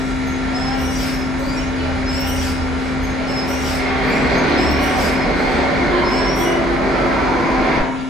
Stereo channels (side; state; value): both; normal; correlation 0.60